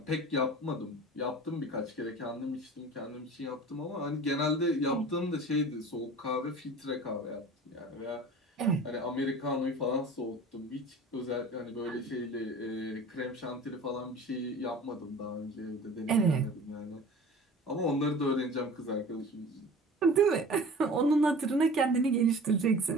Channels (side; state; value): both; normal; correlation 0.41